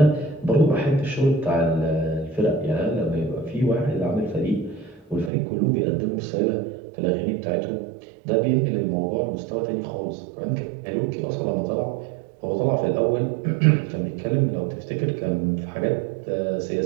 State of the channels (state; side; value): drops out; left; at 5.3 s